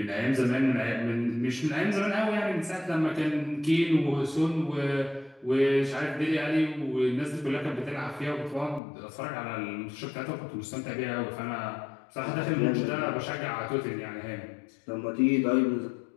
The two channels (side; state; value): right; drops out; at 8.8 s